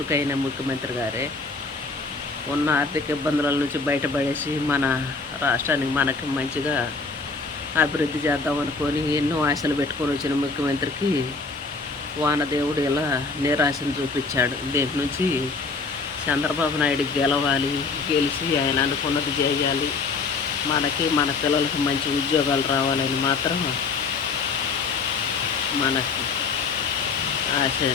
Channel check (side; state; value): right; quieter; 4.3 dB